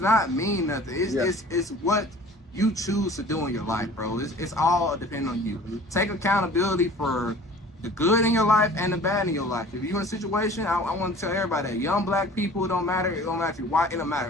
mean nothing. It's what you choose to do in your life, bro. It's all depending on you. Take accountability for the good in your life and the bad in your life. If you're in a situation, I want to tell everybody that young black people, it don't matter if you're white, it don't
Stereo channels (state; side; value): normal; both; correlation 0.46